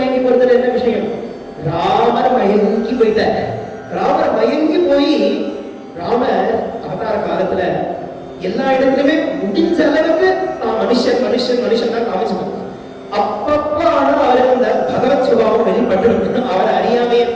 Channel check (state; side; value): identical; both; correlation 1.00